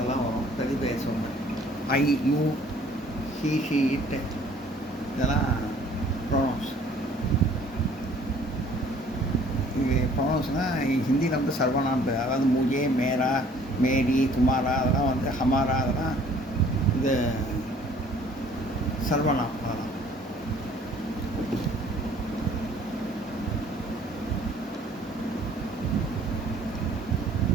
வரும் பிரதிபெயர் சொற்கள். ஐ யூ ஹீ ஷீ இட்டு இதெல்லாம் ப்ரோனோன்ஸ். இது ப்ரொனவுன்ஸ்னால் ஹிந்தியில் வந்து சர்வநாம் பேர். அதாவது முஜே மேரா மேரி துமாரா அதெல்லாம் வந்து ஹமாரா அதெல்லாம் இது சர்வநாம். அதெல்லாம்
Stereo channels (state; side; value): normal; both; correlation 0.55